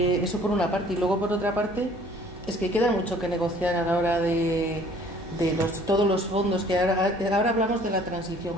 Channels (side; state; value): both; normal; correlation 0.55